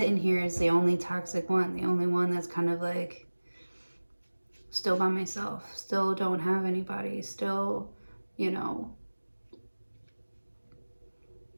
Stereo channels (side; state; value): both; inverted; correlation -1.00